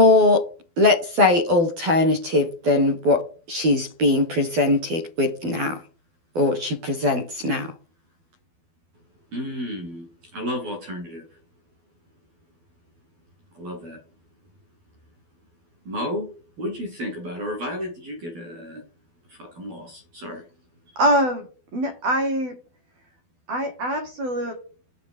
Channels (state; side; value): late; left; 12 ms